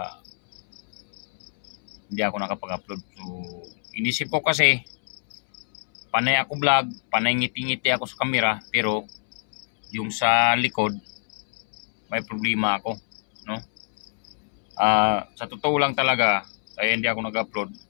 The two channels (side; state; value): right; silent; 62 dB below the other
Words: hindi ako nakapag-upload. So, inisip ko kasi panay ako vlog, panay ngiti-ngiti ako sa camera, pero yung sa likod may problema ako, no? Sa totoo lang talaga, kaya hindi ako nag-upload